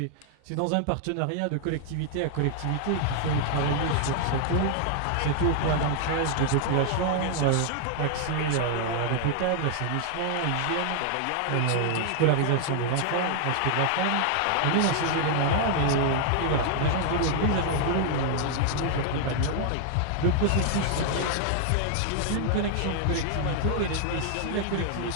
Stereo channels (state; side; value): different; both; correlation 0.00